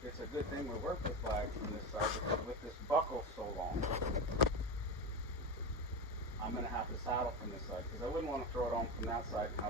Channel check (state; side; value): normal; both; correlation 0.19